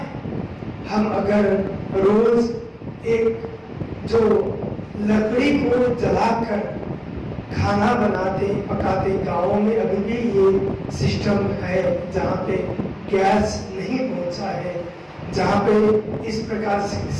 हम अगर रोज एक जो लकड़ी को जलाकर खाना बनाते पकाते, गाँवों में अभी भी ये सिस्टम है जहाँ पे गैस नहीं पहुँचा है, जहाँ पे इस प्रकार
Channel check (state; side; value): identical; both; correlation 1.00